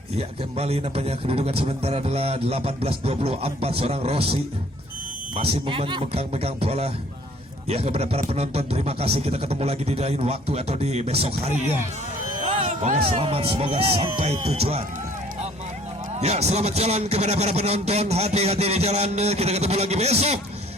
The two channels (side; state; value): both; normal; correlation 0.56